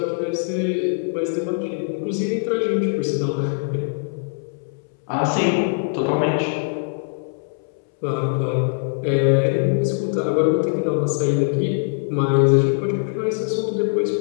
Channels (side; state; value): right; silent; 64 dB below the other